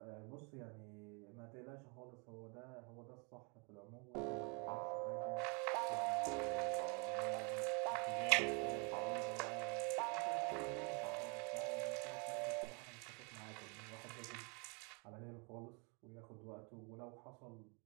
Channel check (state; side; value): quieter; left; 34.1 dB